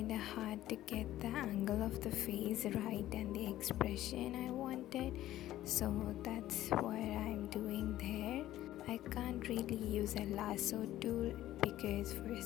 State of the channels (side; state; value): right; quieter; 14.0 dB